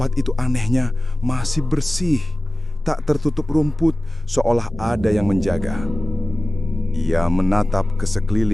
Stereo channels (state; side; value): normal; both; correlation 0.97